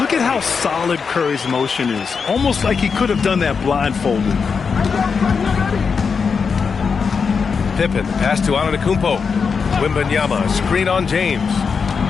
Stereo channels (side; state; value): right; quieter; 5.6 dB